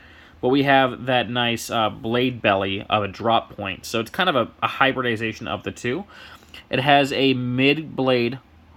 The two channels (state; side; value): identical; both; correlation 1.00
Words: but we have that nice blade belly of a drop point. So it's kind of a hybridization of the two. It has a mid-blade